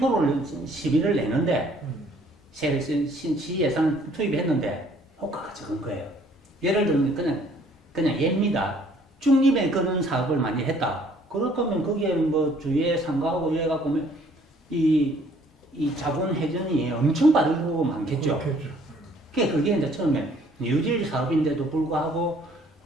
시비를 내는데 시 예산 투입했는데 효과가 적은 거예요. 예를 들면 그냥 예입니다. 중립에 그런 사업을 많이 했다. 그럴 거면 거기에 뭐 주위에 상가하고 이래 갖고 이 자본 회전이 엄청 빠르고 많겠죠. 그렇겠죠. 그게 이제 처음에 뉴딜 사업인데도 불구하고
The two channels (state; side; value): normal; both; correlation 0.60